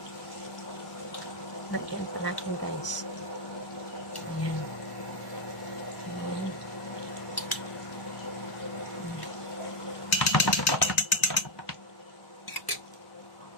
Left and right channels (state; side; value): late; right; 1.1 ms